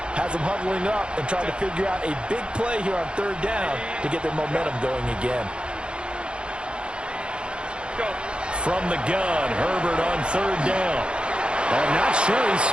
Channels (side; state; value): left; late; 0.054 ms